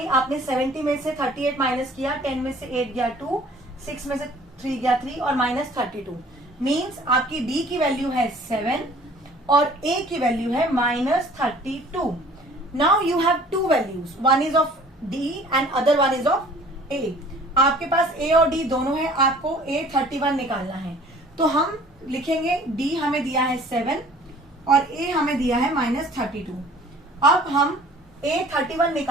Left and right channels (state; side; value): normal; both; correlation 0.51